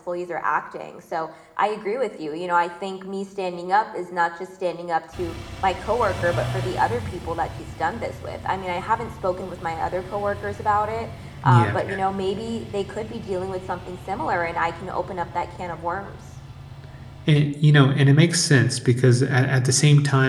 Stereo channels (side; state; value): both; identical; correlation 1.00